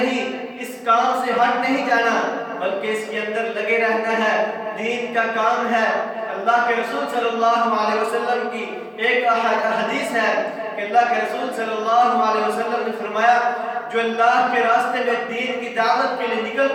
اس کام سے ہٹ نہیں جانا بلکہ اس کے اندر لگے رہنا ہے, دین کا کام ہے. اللہ کے رسول صلی اللہ علیہ وسلم کی ایک حدیث ہے کہ اللہ کے رسول صلی اللہ علیہ وسلم نے فرمایا جو اللہ کے راستے میں دین کی دعوت کے لیے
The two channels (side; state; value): both; identical; correlation 1.00